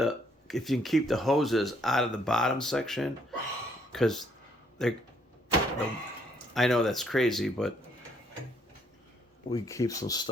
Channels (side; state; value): both; normal; correlation 0.69